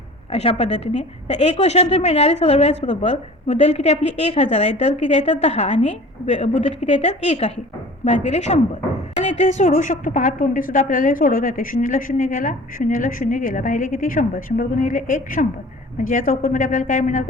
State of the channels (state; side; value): normal; both; correlation 0.43